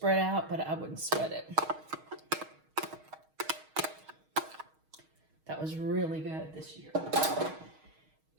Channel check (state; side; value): late; left; 6.4 ms